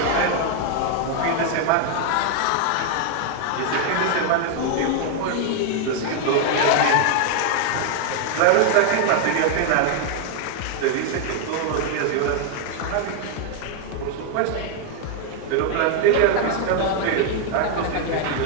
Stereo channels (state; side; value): different; both; correlation 0.00